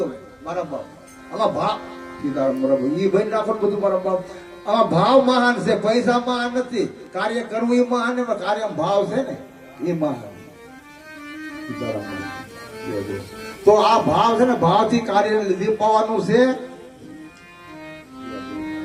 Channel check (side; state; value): both; identical; correlation 1.00